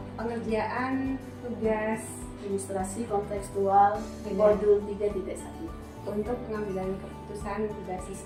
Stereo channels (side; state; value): both; identical; correlation 1.00